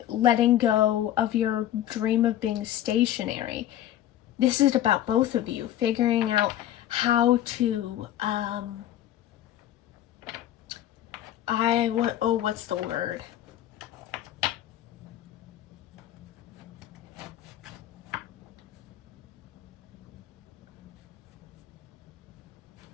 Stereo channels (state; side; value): quieter; right; 12.3 dB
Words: letting go of your dream of being stationary. This is about both of you figuring out how to, what's the word?